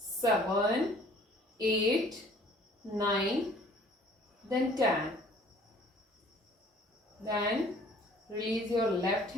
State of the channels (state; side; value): normal; both; correlation 0.53